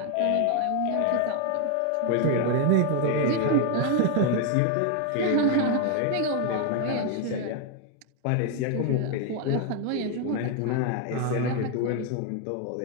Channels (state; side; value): different; both; correlation 0.01